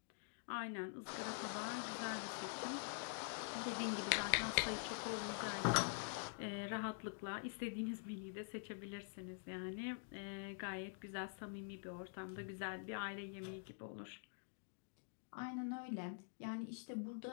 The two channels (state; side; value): silent; right; digital silence